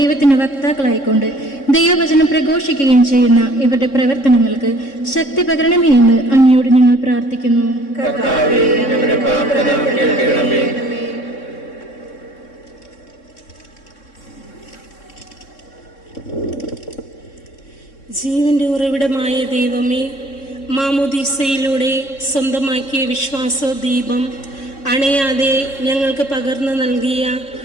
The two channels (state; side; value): late; right; 3.6 ms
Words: വക്താക്കളായിക്കൊണ്ട് ദൈവവചനം പ്രഘോഷിക്കുകയും ചെയ്യുന്ന ഇവരുടെ പ്രവർത്തനങ്ങൾക്ക് ശക്തി പകരണമേ എന്ന് അങ്ങയോട് ഞങ്ങൾ പ്രാർത്ഥിക്കുന്നു. ജീവന്റെ ഉറവിടമായ ദൈവമേ, മാമോദീസയിലൂടെ സ്വന്തമാക്കിയ വിശ്വാസ ദീപം അണയാതെ ഞങ്ങൾക്ക് പകർന്നു നൽകിയ